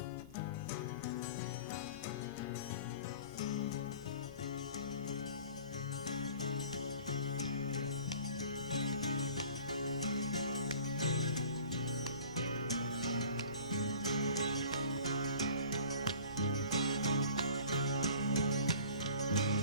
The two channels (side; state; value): both; inverted; correlation -0.48